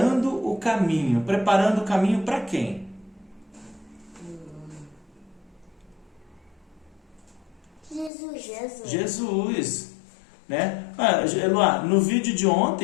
o caminho. Preparando o caminho para quem? Jesus, né? Eloá, no vídeo de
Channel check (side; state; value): right; drops out; at 8.1 s